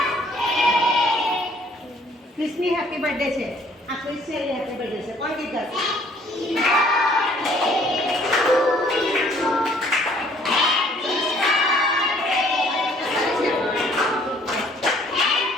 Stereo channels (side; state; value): both; normal; correlation 0.60